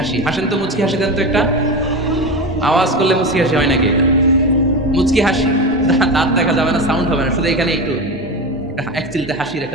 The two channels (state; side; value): normal; both; correlation 0.22